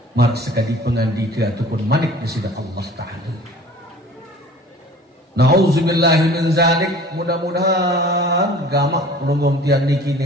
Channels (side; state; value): both; normal; correlation 0.46